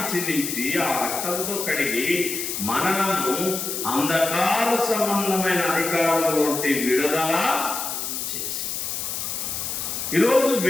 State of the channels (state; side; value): noise; left; hiss, 4 dB below the sound